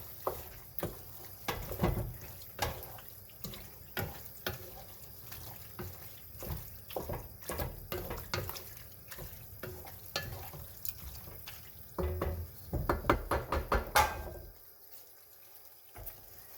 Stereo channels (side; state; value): both; identical; correlation 1.00